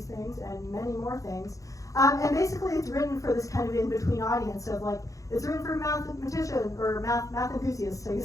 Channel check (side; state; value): right; late; 0.16 ms